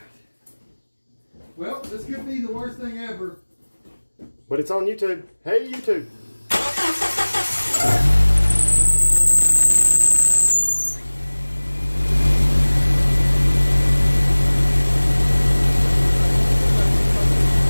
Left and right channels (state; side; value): inverted; both; correlation -1.00